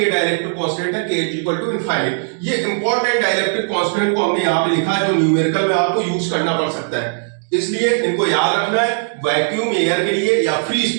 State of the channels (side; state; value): left; silent; digital silence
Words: डाइलेक्ट्रिक कांस्टेंट है के इक्वल टू इनफाइनाइट। ये इंपॉर्टेंट डाइलेक्ट्रिक कांस्टेंट को हमने यहाँ पे लिखा है, जो न्यूमेरिकल में आपको यूज करना पड़ सकता है, इसलिए इनको याद रखना है। वैक्यूम एयर के लिए या फ्री